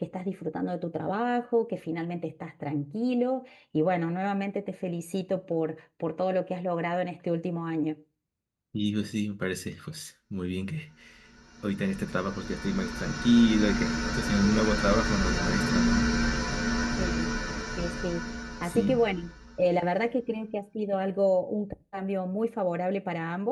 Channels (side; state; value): both; identical; correlation 1.00